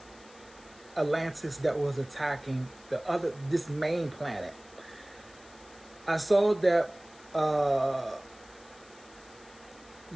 Atlantis that was attacking this main planet. I saw that the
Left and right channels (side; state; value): left; noise; hiss, 24 dB below the sound